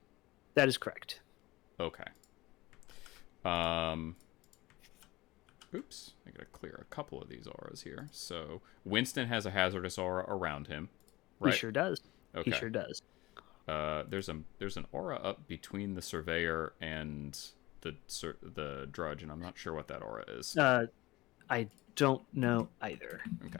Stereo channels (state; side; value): quieter; right; 19.7 dB